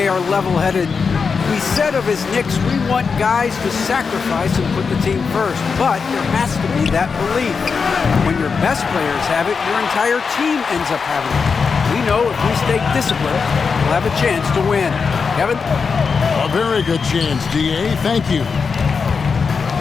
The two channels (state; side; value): quieter; right; 5.4 dB